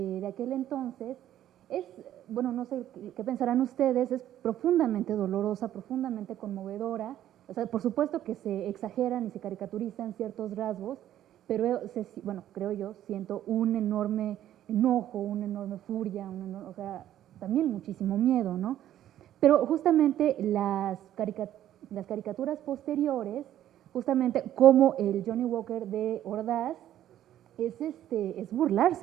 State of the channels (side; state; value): left; quieter; 12.0 dB